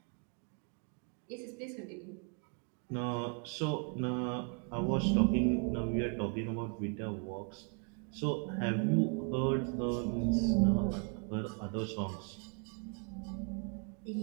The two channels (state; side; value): quieter; left; 39.6 dB